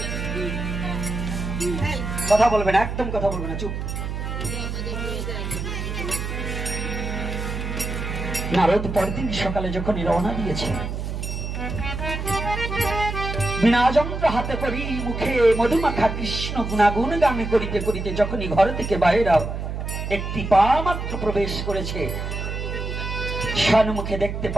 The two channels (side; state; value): right; noise; hum, 4 dB below the sound